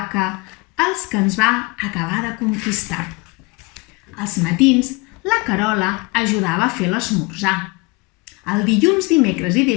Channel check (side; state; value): right; quieter; 26.7 dB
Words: els que ens va acabar de conquistar. Als matins, la Carola ajudava a fer l'esmorzar. El dilluns, dimecres i